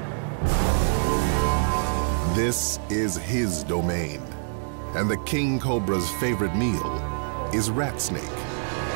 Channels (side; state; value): left; silent; digital silence